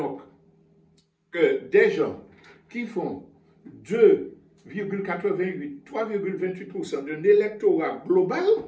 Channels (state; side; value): identical; both; correlation 1.00